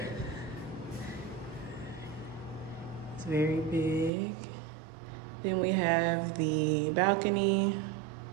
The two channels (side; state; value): left; drops out; at 4.1 s